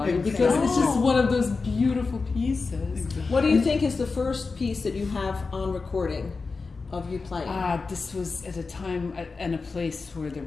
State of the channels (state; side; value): quieter; right; 4.3 dB